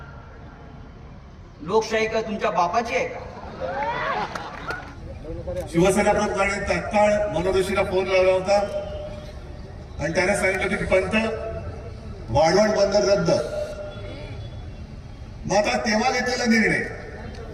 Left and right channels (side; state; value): both; identical; correlation 1.00